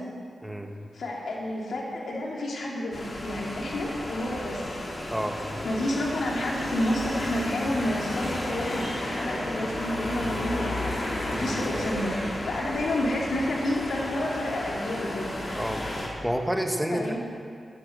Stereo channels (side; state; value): both; normal; correlation 0.90